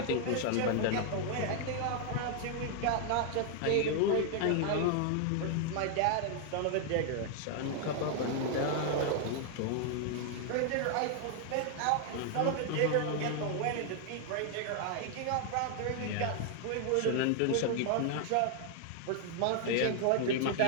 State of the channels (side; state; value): both; different; correlation 0.00